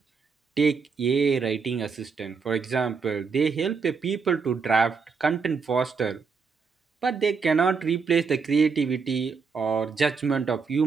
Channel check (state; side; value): quieter; left; 5.3 dB